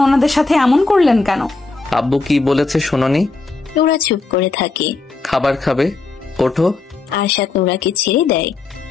ওনাদের সাথে এমন করলেন কেন? আব্বু কি বলেছে শোনোনি? নুরা চুপ করে থাকে। খাবার খাবে? ওঠো। আরশাদ নুরাকে ছেড়ে দেয়।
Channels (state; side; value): quieter; right; 3.8 dB